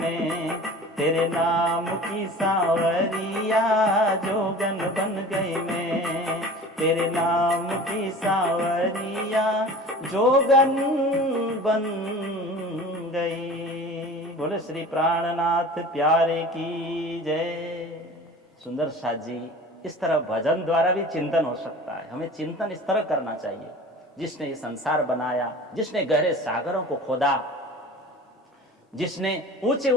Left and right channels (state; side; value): normal; both; correlation 0.40